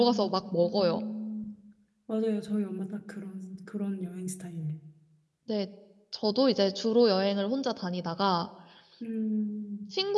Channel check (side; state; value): both; identical; correlation 1.00